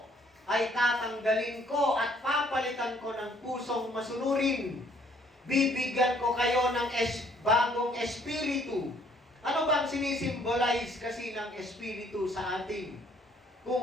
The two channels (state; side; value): normal; both; correlation 0.63